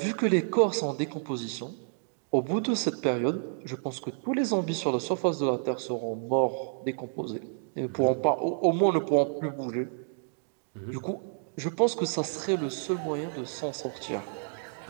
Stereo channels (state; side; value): silent; left; digital silence